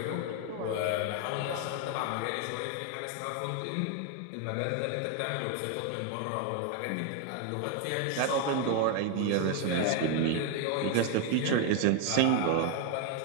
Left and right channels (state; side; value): different; both; correlation 0.01